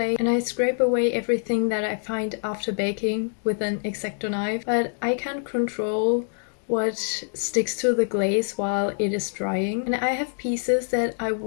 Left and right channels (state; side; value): silent; right; 60 dB below the other